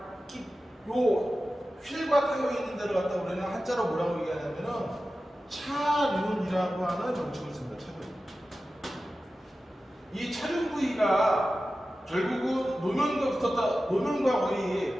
휠과 타이어에 있는 데를 갖다 우리는 한자로 뭐라고 얘기하냐면은 차륜이라고 하는 명칭을 씁니다. 차륜. 이 차륜 부위가 결국은 노면과 거의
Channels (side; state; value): both; normal; correlation 0.94